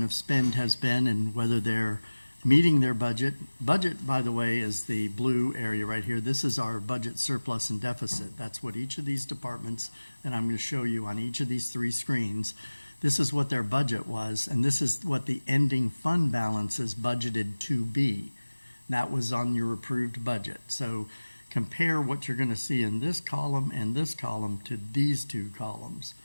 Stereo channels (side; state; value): both; inverted; correlation -1.00